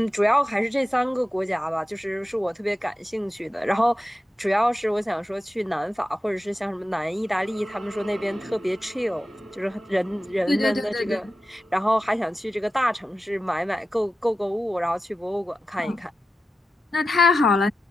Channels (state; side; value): normal; both; correlation 0.91